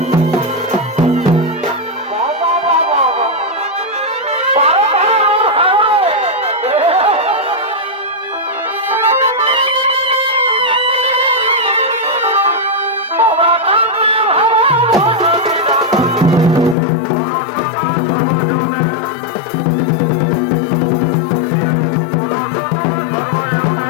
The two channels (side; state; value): right; drops out; at 16.8 s